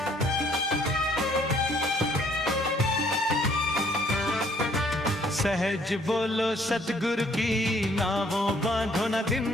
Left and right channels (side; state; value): both; normal; correlation 0.63